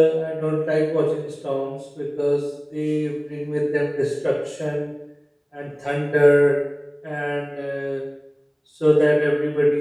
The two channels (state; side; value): identical; both; correlation 1.00